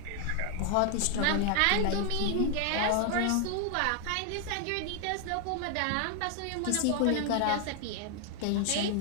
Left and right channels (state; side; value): different; both; correlation 0.00